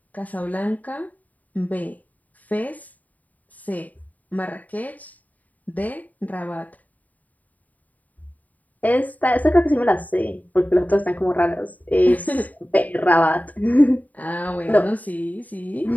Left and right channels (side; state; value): right; late; 0.075 ms